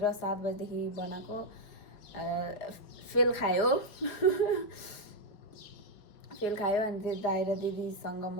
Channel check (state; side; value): late; right; 5.0 ms